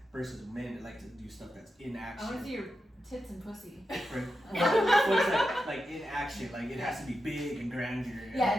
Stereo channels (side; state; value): both; normal; correlation 0.89